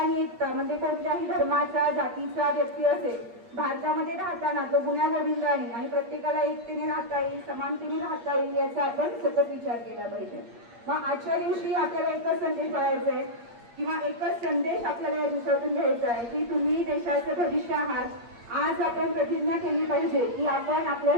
एकता म्हणजे कोणत्याही धर्माचा, जातीचा व्यक्ती असेल, भारतामध्ये राहताना तो गुण्यागोविंदाने आणि प्रत्येकाला एकतेने राहता येईल, समानतेने राहता येईल याचा आपण सतत विचार केला पाहिजे. मग आजच्या दिवशी आपल्याला एकच संदेश पाळायचा आहे किंवा एकच संदेश आपल्याला या दिवसातून घ्यायचा आहे की तुम्ही देशाचं भविष्य आहात. आज आपण प्रतिज्ञा केली पाहिजे की आपण आपल्या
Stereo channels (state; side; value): late; left; 8.5 ms